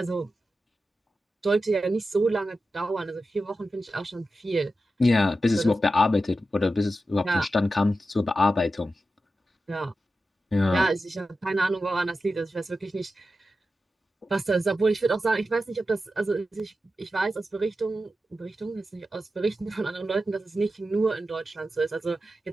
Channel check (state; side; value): normal; both; correlation 0.91